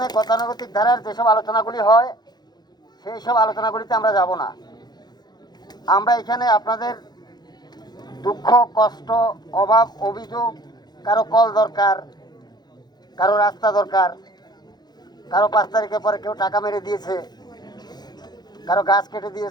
গতানুগতিক ধারার যেসব আলোচনাগুলি হয় সেই সব আলোচনাগুলিতে আমরা যাব না। আমরা এখানে আপনাদের দুঃখ, কষ্ট, অভাব, অভিযোগ, কারো কল দরকার, কারো রাস্তা দরকার, কারো 5 তারিখের পরে কেউ টাকা মেরে দিয়েছে, কারো গাছ কেটে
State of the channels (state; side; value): late; right; 0.20 ms